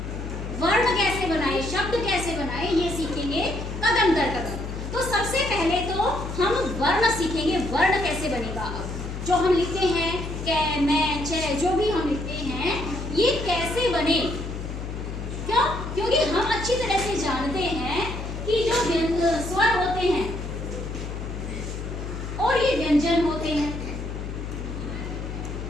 वर्ण कैसे बनाएं, शब्द कैसे बनाएं, ये सीखेंगे कदम दर कदम। तो सबसे पहले तो हम वर्ण सीखेंगे, वर्ण कैसे बनेगा। अब जो हम लिखते हैं कै मैं चे, जो भी हम लिखते हैं ये कैसे बने, क्यों? क्योंकि हम अच्छी तरह से जानते हैं कि जो स्वर होते हैं और ये व्यंजन होते हैं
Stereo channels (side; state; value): left; noise; hum, 6 dB below the sound